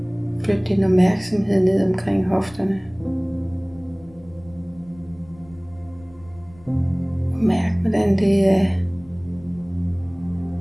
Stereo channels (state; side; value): noise; left; rumble, 24 dB below the sound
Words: flytte din opmærksomhed ned omkring hofterne. Og mærk, hvordan det er